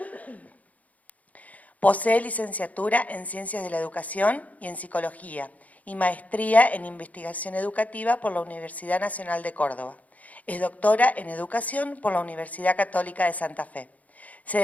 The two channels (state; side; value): late; right; 0.073 ms